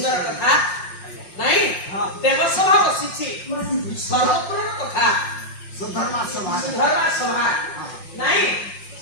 କଥା ନାଇଁ ଦେବସଭା ବସିଛି ସର୍ବପୂର୍ଣ୍ଣ କଥା ସୁଧର୍ମା ସଭା ନାଇଁ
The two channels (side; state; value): right; late; 5.5 ms